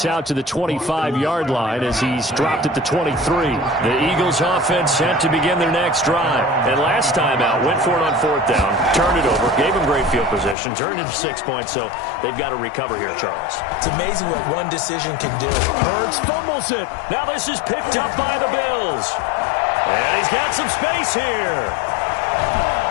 out to the 25-yard line as he's dropped at the 23. The Eagles offense set to begin their next drive. And last time out, went for it on 4th down, turned it over, gave them great field position, turned it to 6 points, so they've got to recover here, Charles. It's amazing what one decision can do. Hurts fumbles it. Now this is picked up by the Bills. And he's got some space here.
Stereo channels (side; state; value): right; drops out; at 10.6 s